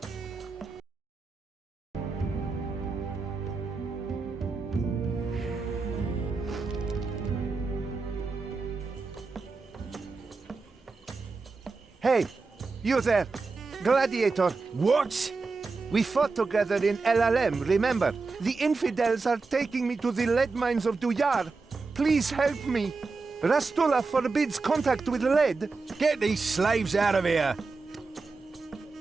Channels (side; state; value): left; quieter; 4.1 dB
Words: Hey, you there! Gladiator! What? We fought together in LLM, remember? The infidels are taking me to the lead mines of Duyar. Please help me. Rastula forbids contact with lead. Get these slaves out of here!